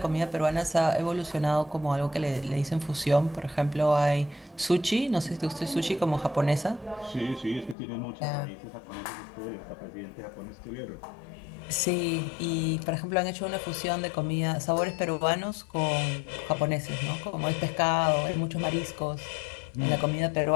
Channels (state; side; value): drops out; right; at 7.8 s